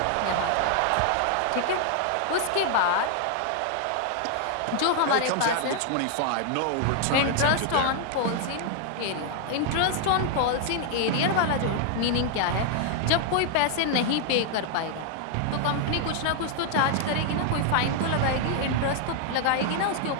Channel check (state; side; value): different; both; correlation 0.00